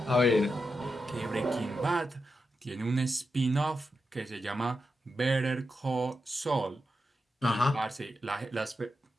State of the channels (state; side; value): normal; both; correlation 0.88